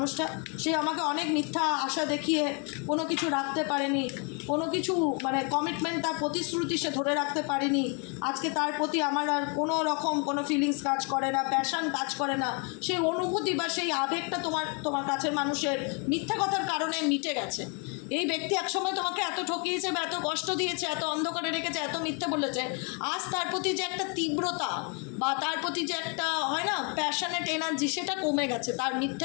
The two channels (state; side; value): quieter; right; 35.3 dB